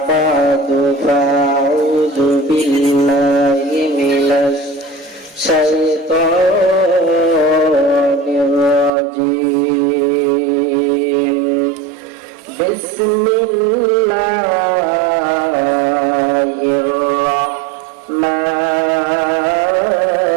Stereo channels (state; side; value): drops out; left; at 8.9 s